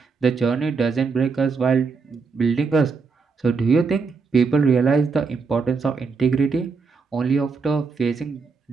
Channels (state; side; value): quieter; left; 4.8 dB